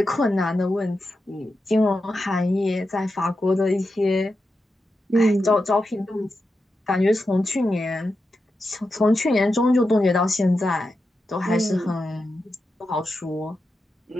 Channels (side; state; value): both; normal; correlation 0.89